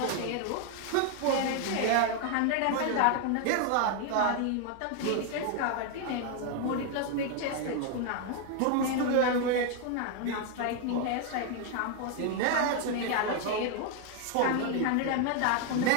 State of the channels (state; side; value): different; both; correlation 0.01